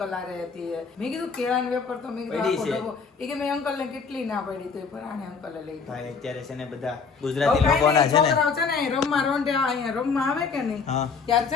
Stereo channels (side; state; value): right; quieter; 5.3 dB